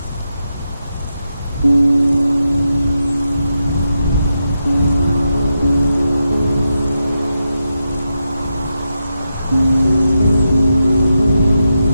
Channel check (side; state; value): both; inverted; correlation -0.87